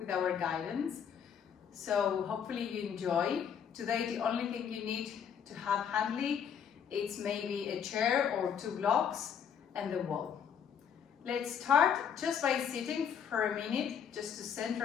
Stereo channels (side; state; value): right; quieter; 7.9 dB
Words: our guidance. So hopefully you enjoy. Today the only thing you need to have handy is maybe a chair or 2 blocks and the wall. Let's start just by sitting for a minute just to